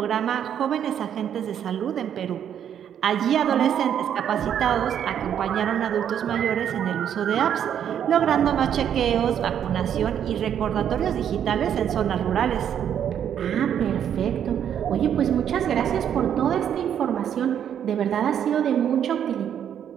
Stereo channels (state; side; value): quieter; left; 9.2 dB